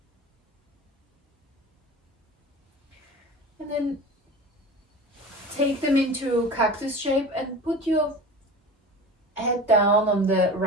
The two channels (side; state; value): both; normal; correlation 0.34